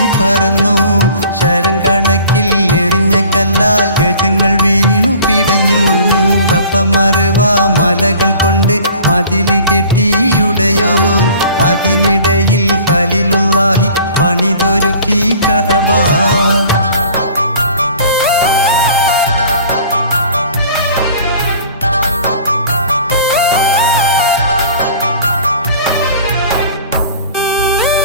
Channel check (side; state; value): both; inverted; correlation -0.48